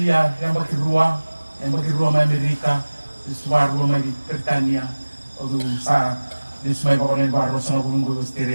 yang baki rua ma Amerika rua ma di Britania au sa nismai bakon baro sanga bulungo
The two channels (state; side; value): inverted; both; correlation -1.00